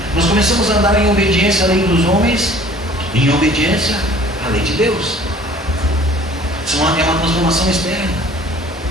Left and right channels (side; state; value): both; normal; correlation 0.51